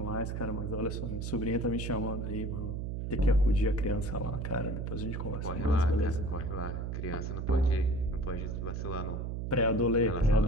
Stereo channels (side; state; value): right; noise; hum, 4 dB below the sound